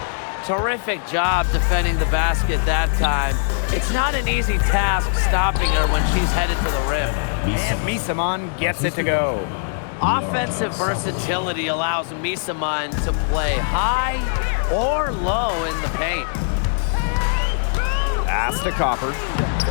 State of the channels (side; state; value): right; silent; digital silence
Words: Terrific job defending the basket that time. It's not an easy task stopping her when she's headed for the rim. And Misaman gets it to go. Offensive versatility allows Misaman to play high or low in the paint. Pass to Copper.